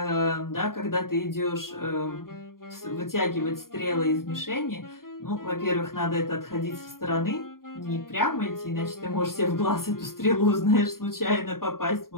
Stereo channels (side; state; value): right; late; 0.91 ms